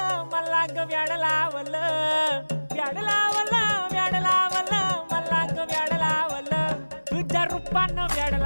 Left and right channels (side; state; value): both; inverted; correlation -1.00